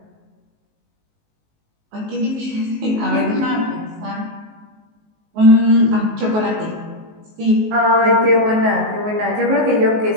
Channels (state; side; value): late; left; 19 ms